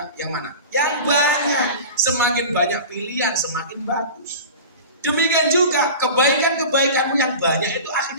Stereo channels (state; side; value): inverted; both; correlation -0.34